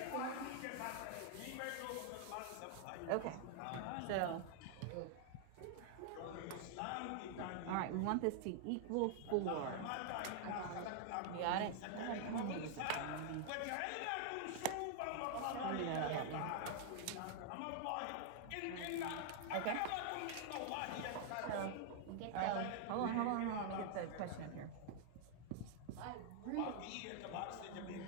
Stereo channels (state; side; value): different; both; correlation 0.00